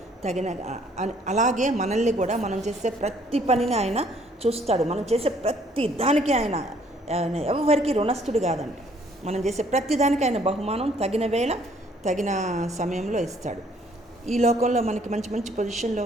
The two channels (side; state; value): both; normal; correlation 0.62